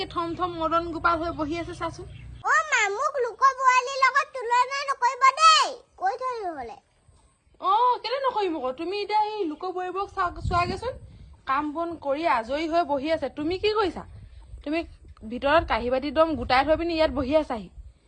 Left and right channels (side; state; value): both; identical; correlation 1.00